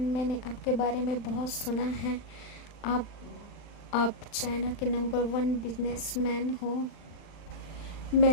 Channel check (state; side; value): late; right; 39 ms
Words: आपके बारे में बहुत सुना है। आप आप चाइना के नंबर 1 बिजनेसमैन हो।